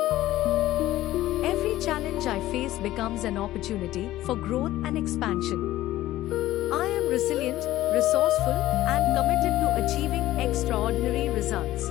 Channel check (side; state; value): right; quieter; 15.2 dB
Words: Every challenge I face becomes an opportunity for growth and expansion. I am resilient, resourceful, and committed to achieving extraordinary